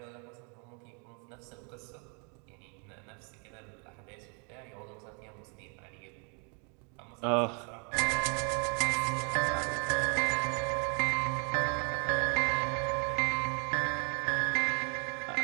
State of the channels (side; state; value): left; quieter; 37.2 dB